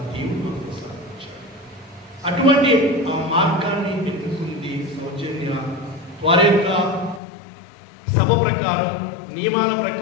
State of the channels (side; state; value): right; drops out; at 7.2 s